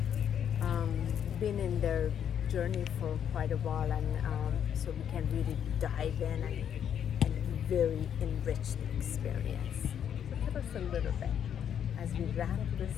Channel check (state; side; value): quieter; right; 8.9 dB